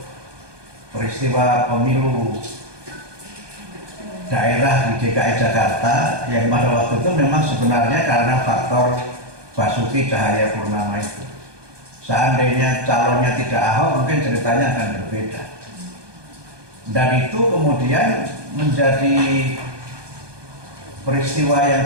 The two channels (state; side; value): late; left; 1.2 ms